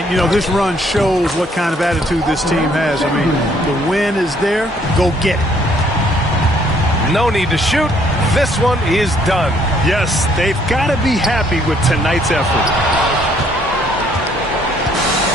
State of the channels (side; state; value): both; normal; correlation 0.65